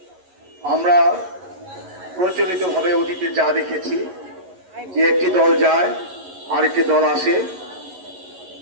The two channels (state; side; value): late; left; 11 ms